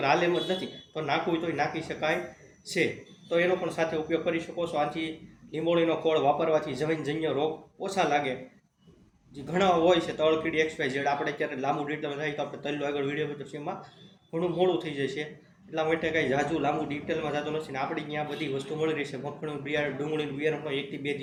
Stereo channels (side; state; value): both; identical; correlation 1.00